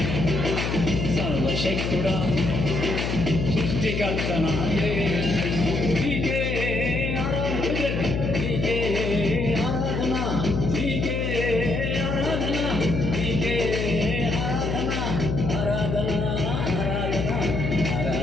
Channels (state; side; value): noise; left; hum, 1 dB below the sound